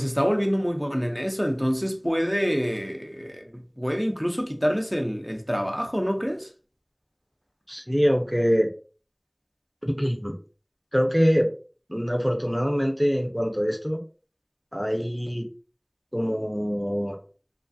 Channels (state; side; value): identical; both; correlation 1.00